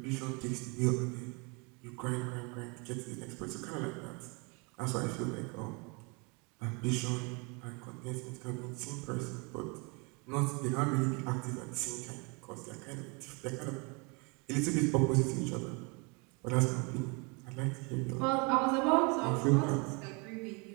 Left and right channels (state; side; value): quieter; left; 31.2 dB